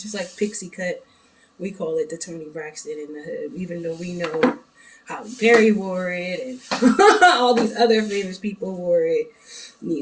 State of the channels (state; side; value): identical; both; correlation 1.00